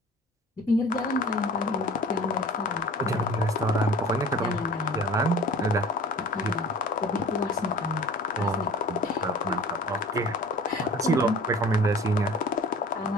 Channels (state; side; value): normal; both; correlation 0.43